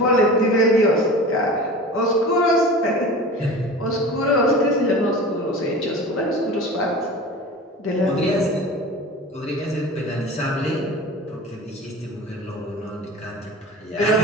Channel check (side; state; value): both; normal; correlation 0.35